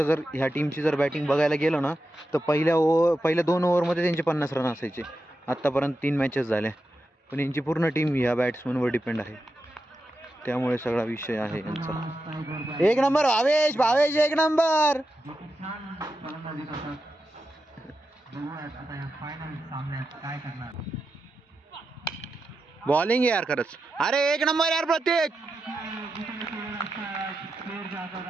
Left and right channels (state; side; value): normal; both; correlation 0.89